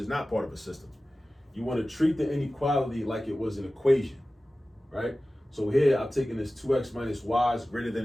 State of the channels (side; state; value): both; normal; correlation 0.96